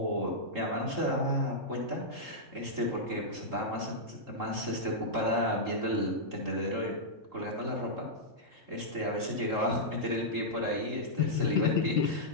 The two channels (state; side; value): late; left; 3.7 ms